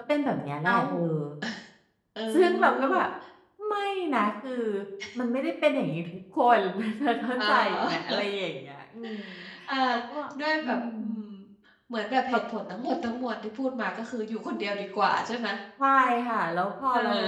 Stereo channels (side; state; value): both; identical; correlation 1.00